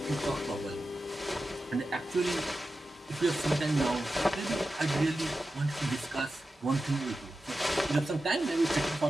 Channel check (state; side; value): normal; both; correlation 0.92